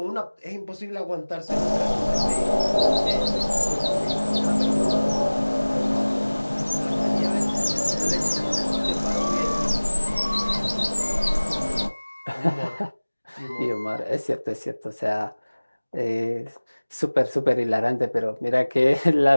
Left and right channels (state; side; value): inverted; both; correlation -1.00